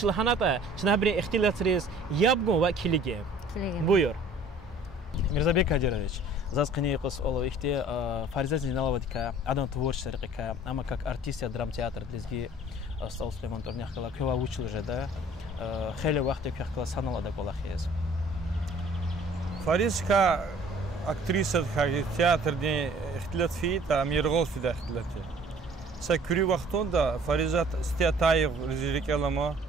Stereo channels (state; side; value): normal; both; correlation 0.52